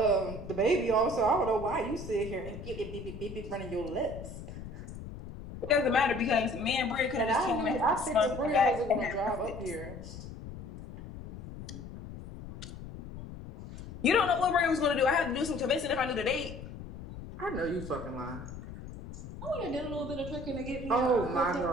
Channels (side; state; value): left; noise; rumble, 12 dB below the sound